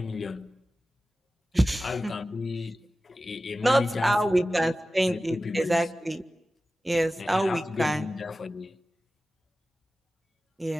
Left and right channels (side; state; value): both; normal; correlation 0.95